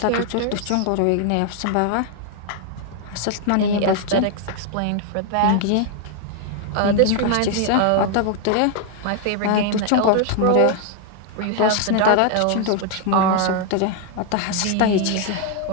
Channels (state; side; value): different; both; correlation 0.00